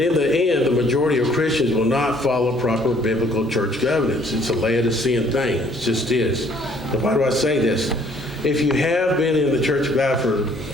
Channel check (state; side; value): normal; both; correlation 0.60